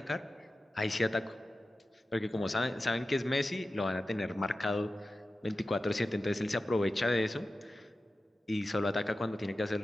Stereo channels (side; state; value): both; normal; correlation 0.94